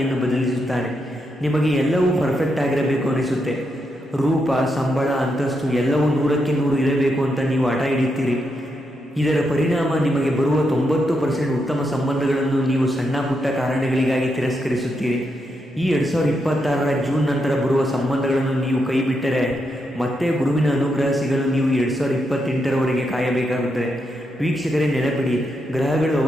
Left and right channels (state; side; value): normal; both; correlation 0.82